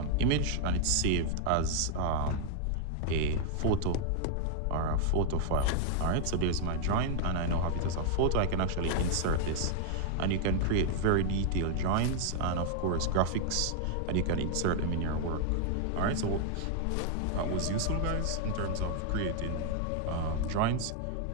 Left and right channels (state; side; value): different; both; correlation 0.00